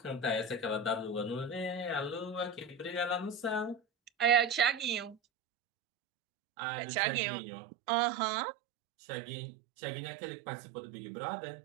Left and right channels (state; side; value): drops out; left; at 5.2 s